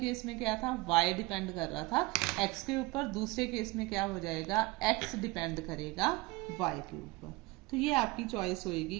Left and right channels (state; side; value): quieter; left; 22.5 dB